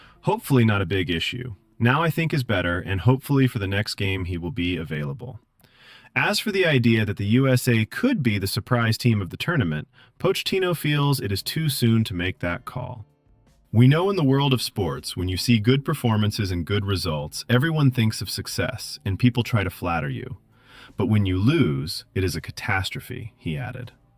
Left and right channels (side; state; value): both; identical; correlation 1.00